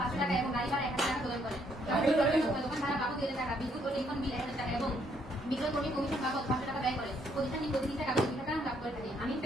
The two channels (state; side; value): normal; both; correlation 0.70